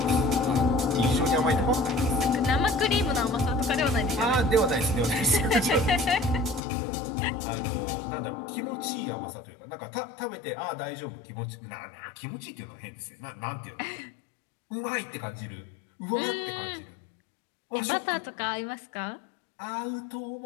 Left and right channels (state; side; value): drops out; right; at 6.6 s